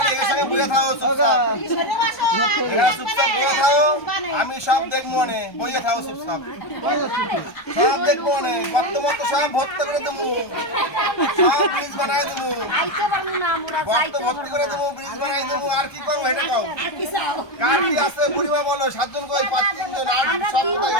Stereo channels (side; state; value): right; late; 1.3 ms